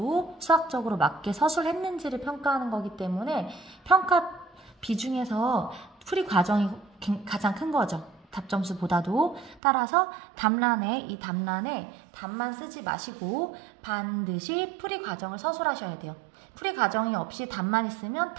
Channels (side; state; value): left; drops out; at 9.6 s